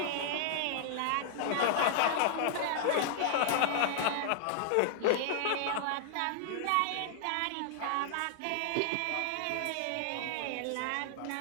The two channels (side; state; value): both; different; correlation -0.01